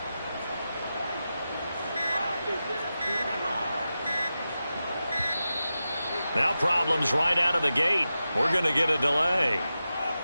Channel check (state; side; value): inverted; both; correlation -0.92